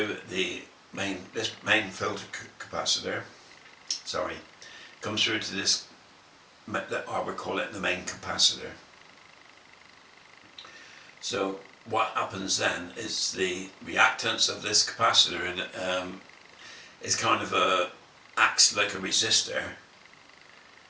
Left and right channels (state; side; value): identical; both; correlation 1.00